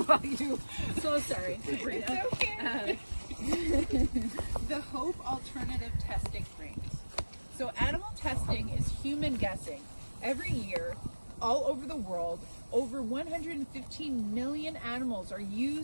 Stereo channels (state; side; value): inverted; both; correlation -1.00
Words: you. So sorry, Sabrina. It's okay. The hope alternative testing rings. So animal testing is human guessing. Every year, all over the world, over 115 million animals are